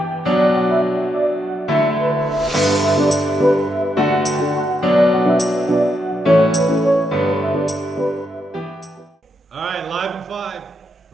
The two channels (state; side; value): normal; both; correlation 0.81